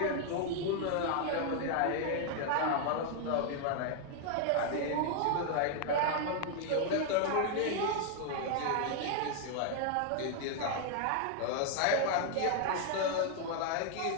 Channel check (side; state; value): both; different; correlation 0.00